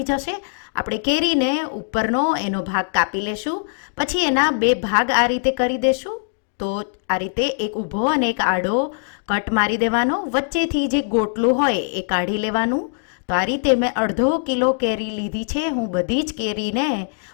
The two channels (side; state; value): right; silent; digital silence